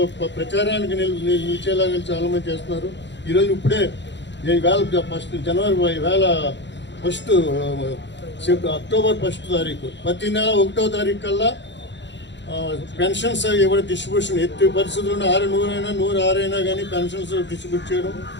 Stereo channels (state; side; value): late; right; 0.52 ms